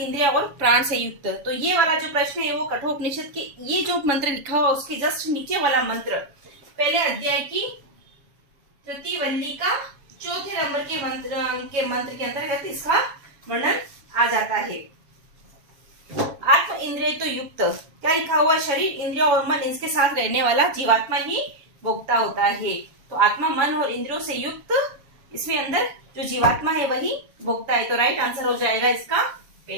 और प्राण से युक्त। तो ये वाला जो प्रश्न है वो कठोपनिषद के ये जो मंत्र लिखा हुआ उसके जस्ट नीचे वाला मंत्र पहले अध्याय की तृतीय वल्ली का चौथे नंबर के मंत्र के अंतर्गत इसका वर्णन आ जाता है। आत्म इंद्रिय तो युक्त, क्या लिखा हुआ है? शरीर, इंद्रिय और मन इसके साथ रहने वाला जीवात्मा ही भोक्ता होता है। तो आत्मा, मन और इंद्रियों से युक्त इसमें अंदर जो जीवात्मा है वही भोक्ता है। तो राइट आंसर हो जाएगा इसका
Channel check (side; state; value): left; late; 7.1 ms